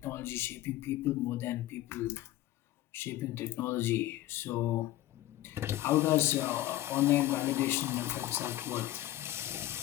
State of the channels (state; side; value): quieter; right; 15.0 dB